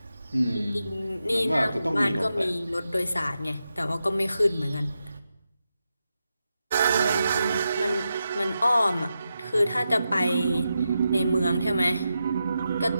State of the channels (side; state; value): both; inverted; correlation -0.88